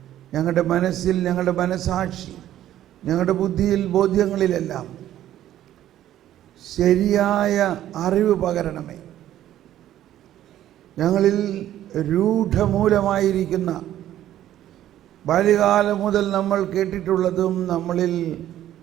ഞങ്ങളുടെ മനസ്സിൽ, ഞങ്ങളുടെ മനസാക്ഷി, ഞങ്ങളുടെ ബുദ്ധിയിൽ, ബോധ്യങ്ങളിലെല്ലാം ശരിയായ അറിവ് പകരണമേ. ഞങ്ങളിൽ രൂഢമൂലമായിരിക്കുന്ന ബാല്യകാലം മുതൽ നമ്മൾ കേട്ടിട്ടുള്ളതും നമ്മളിൽ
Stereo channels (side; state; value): left; quieter; 12.4 dB